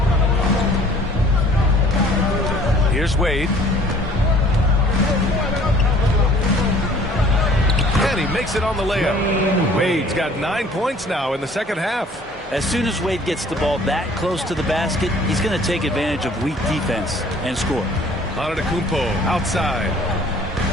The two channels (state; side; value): normal; both; correlation 0.53